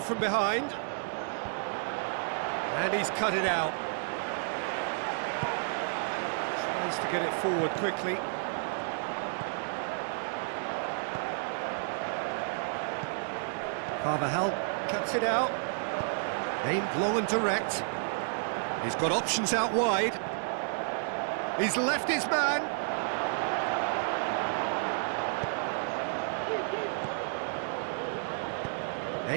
behind. And he's cut it out. Tries to get it forward quickly. Carvajal cuts it out. Aimed long and direct. He's got options out wide. He's left his man.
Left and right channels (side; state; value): left; silent; digital silence